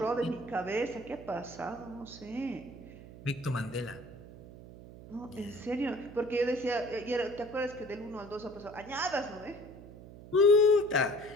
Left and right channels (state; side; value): noise; right; hum, 16 dB below the sound